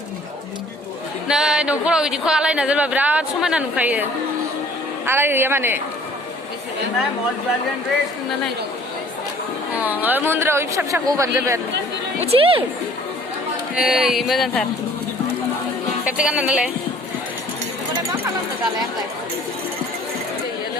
नै न'फोराव बिदिखौ आलायना दोनबा बिराद समायना नुखायो आलायहैया माने मन्दिराव फिसा फिसाखौ होबानो जाबाय आरो उथि ओइ मोजांथार खेबसे गानना नालाय मा खालामनो दालाय आंलाय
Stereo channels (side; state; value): both; normal; correlation 0.53